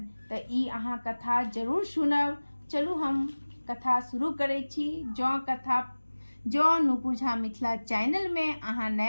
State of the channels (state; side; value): inverted; both; correlation -1.00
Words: तऽ ई अहाँ कथा जरूर सुनब। चलू हम कथा शुरू करै छी। जँ नुपुर झा मिथिला चैनल में अहाँ